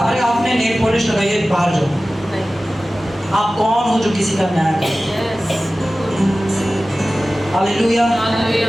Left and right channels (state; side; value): normal; both; correlation 0.96